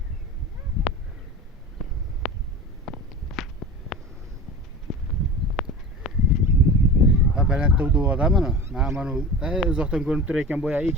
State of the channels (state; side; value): normal; both; correlation 0.35